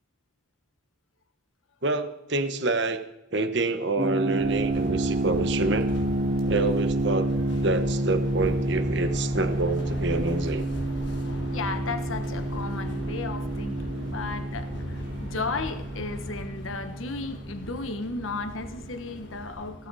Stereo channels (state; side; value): normal; both; correlation 0.41